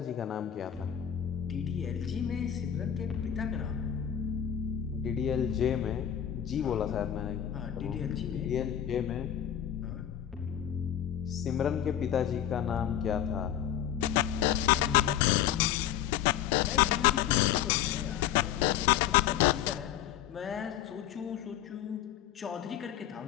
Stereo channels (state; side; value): quieter; right; 10.5 dB